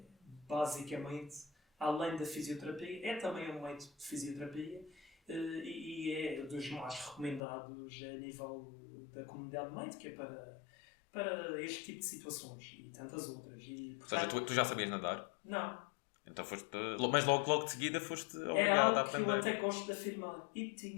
basicamente, além da fisioterapia, é também um método de fisioterapia e é dos mais recomendados a nível da comunidade médica para este tipo de situações e tantas outras. E, portanto, ou seja, tu já sabias nadar? Não. Então mas logo de seguida foste é obrigado a algo que aprender. eu até gosto de afirmar. E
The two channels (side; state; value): right; drops out; at 7.4 s